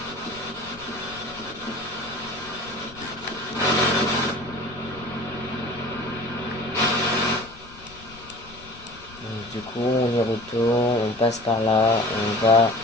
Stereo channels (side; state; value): left; noise; rumble, 20 dB below the sound